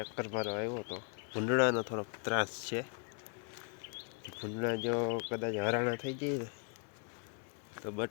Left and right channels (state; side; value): quieter; right; 39.3 dB